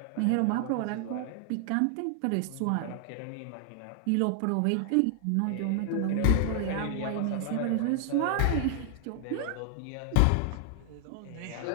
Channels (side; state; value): both; different; correlation 0.00